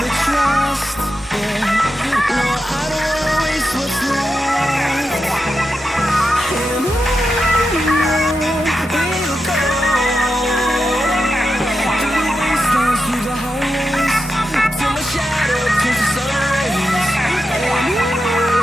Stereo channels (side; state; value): both; normal; correlation 0.88